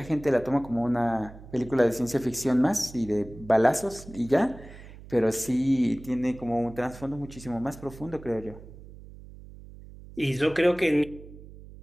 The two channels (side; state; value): right; noise; hum, 17 dB below the sound